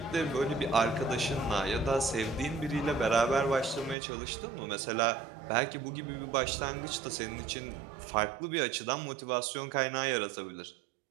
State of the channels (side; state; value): left; drops out; at 4.0 s